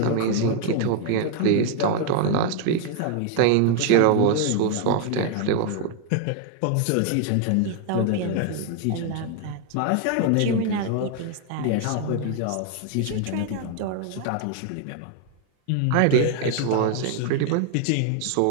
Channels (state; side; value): different; both; correlation 0.00